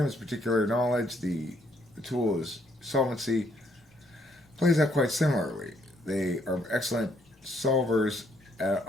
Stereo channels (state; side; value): normal; both; correlation 0.70